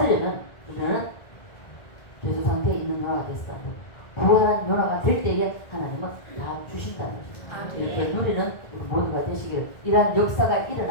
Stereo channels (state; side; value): late; right; 1.7 ms